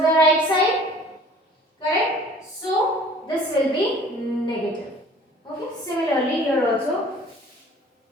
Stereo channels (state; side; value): normal; both; correlation 0.50